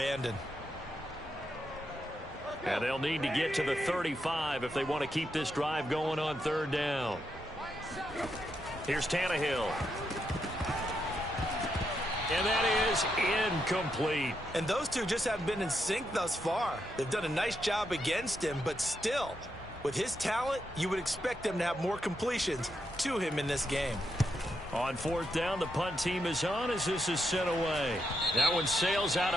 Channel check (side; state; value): both; normal; correlation 0.82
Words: And they'll need to get to the 35 if they want to keep this drive going on 3rd down. Here's Tannehill. And that is incomplete. And those two just haven't been in sync thus far. They've done a nice job against him, but still, with his talent, you would expect them to have more completions to him in this game. On 4th down, the punt team is on as this is sent away. That one sails out